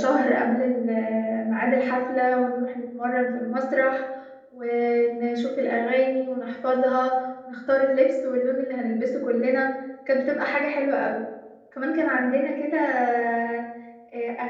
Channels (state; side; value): identical; both; correlation 1.00